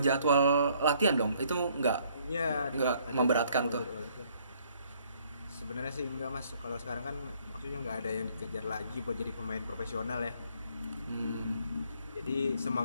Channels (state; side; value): inverted; both; correlation -0.64